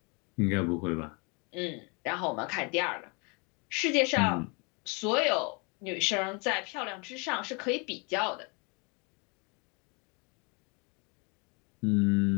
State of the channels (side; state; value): right; quieter; 31.9 dB